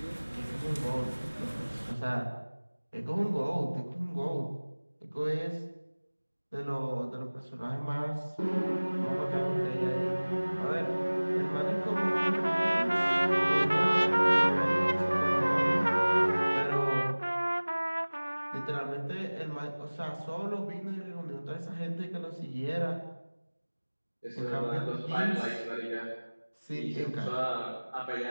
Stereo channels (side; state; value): both; inverted; correlation -1.00